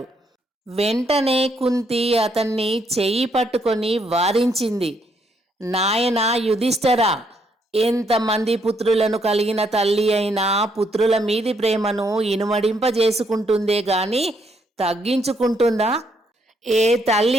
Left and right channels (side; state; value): both; normal; correlation 0.73